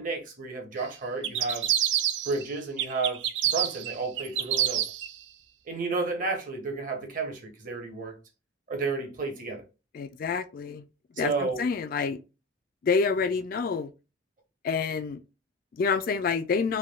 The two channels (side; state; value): both; normal; correlation 0.11